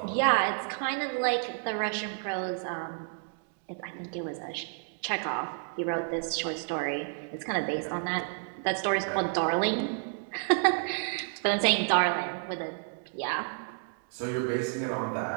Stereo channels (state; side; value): silent; left; 57 dB below the other